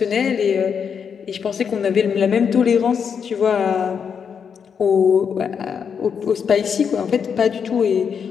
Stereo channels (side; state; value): right; quieter; 6.9 dB